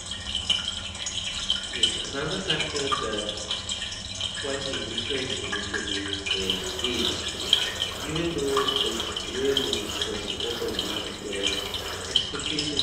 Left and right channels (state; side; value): identical; both; correlation 1.00